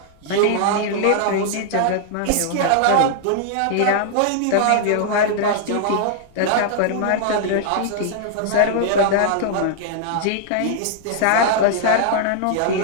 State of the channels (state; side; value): different; both; correlation -0.01